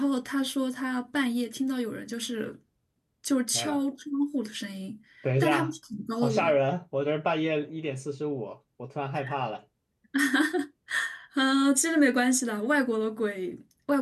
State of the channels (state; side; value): identical; both; correlation 1.00